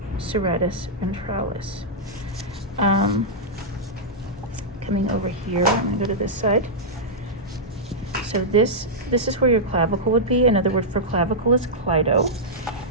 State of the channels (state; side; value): normal; both; correlation -0.09